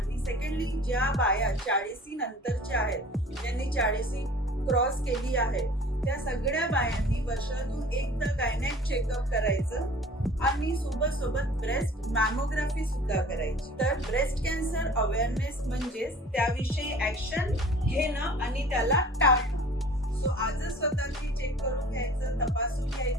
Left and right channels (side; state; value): both; normal; correlation 0.46